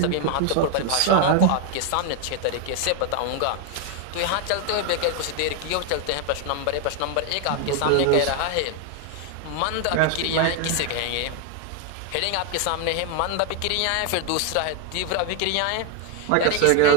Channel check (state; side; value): different; both; correlation 0.01